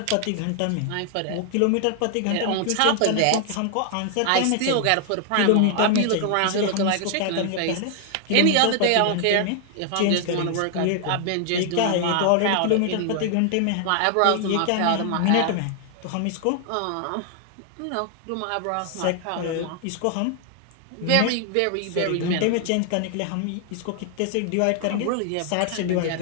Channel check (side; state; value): both; different; correlation 0.00